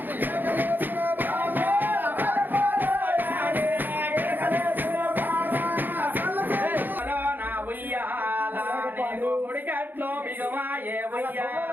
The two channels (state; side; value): late; left; 0.089 ms